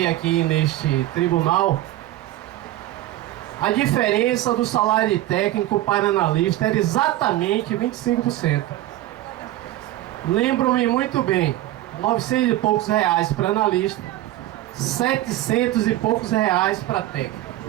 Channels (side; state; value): left; quieter; 15.0 dB